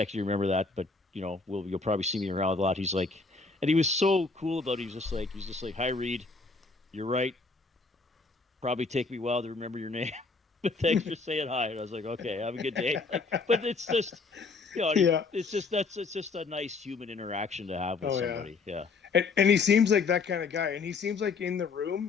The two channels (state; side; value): quieter; right; 4.2 dB